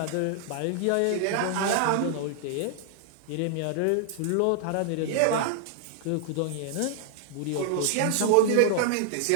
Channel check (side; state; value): both; different; correlation -0.01